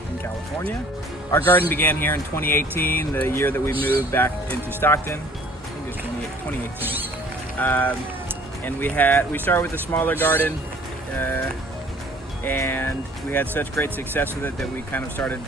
California. Our garden began here in 2018, the year that we moved back into Stockton. I think it was 2018. And we started with a smaller garden, and we had such great success with it that we kind of started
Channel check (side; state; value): both; normal; correlation 0.54